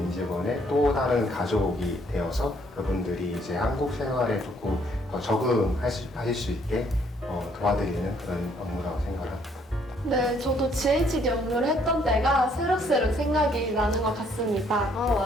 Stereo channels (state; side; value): normal; both; correlation 0.66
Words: 직원의 또 다른 가족이 되어서 그분들이 이제 한국 생활에 조금 더 적응하실 수 있게 도와드리는 그런 업무라고 생각을 합니다. 네, 저도 GHD 업무를 했던 때가 새록새록 생각이 나는 것 같습니다.